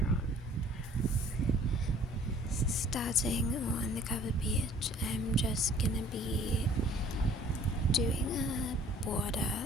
on. Starting on the cover page, I'm just gonna be doing a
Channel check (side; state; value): both; normal; correlation 0.54